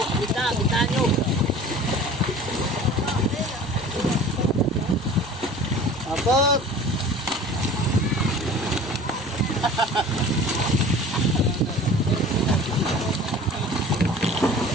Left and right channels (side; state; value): both; normal; correlation 0.43